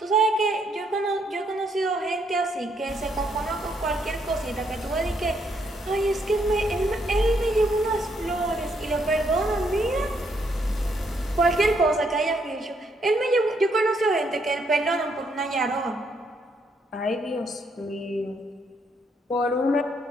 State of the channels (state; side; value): normal; both; correlation 0.73